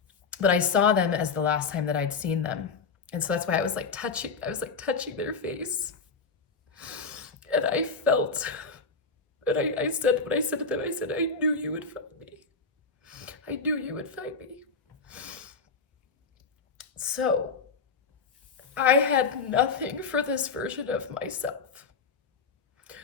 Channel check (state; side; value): quieter; right; 4.8 dB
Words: But I saw them as the last time that I'd seen them. And so that's why I was like touching their face. And I felt, and I said, when I said to them, I said, I knew you would find me. I knew you would find me. So I had nothing for this version of myself.